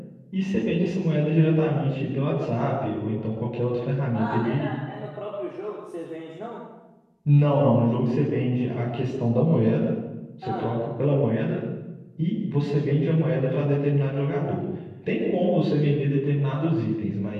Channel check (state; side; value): identical; both; correlation 1.00